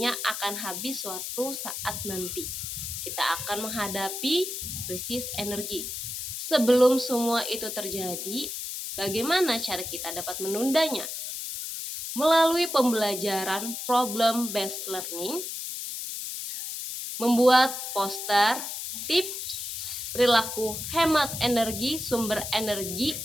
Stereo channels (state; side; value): noise; left; hiss, 5 dB below the sound